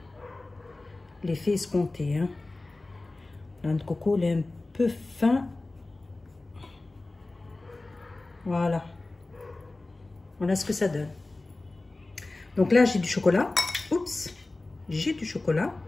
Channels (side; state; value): right; quieter; 3.0 dB